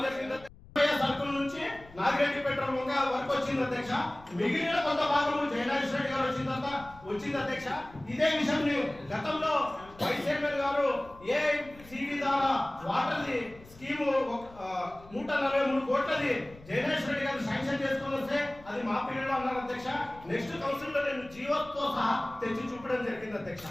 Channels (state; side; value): noise; left; rumble, 22 dB below the sound